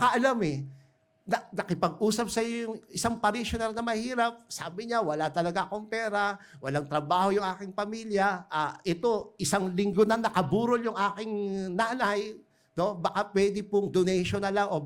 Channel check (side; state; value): both; identical; correlation 1.00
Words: nakipag-usap sa iyo yung isang parishioner na mahirap, sabi niya, wala talaga akong pera, walang trabaho yung aking pamilya, ito, isang linggo na nakaburol yung aking nanay, no? Baka pwede pong donation na lang o